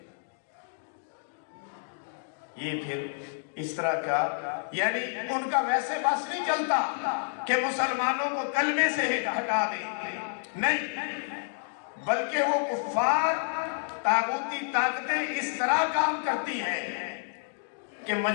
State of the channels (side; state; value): right; silent; digital silence